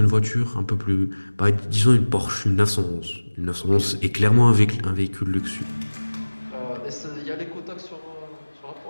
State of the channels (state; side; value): inverted; both; correlation -1.00